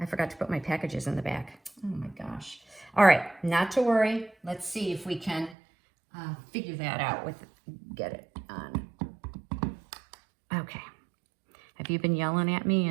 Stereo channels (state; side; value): drops out; left; at 5.6 s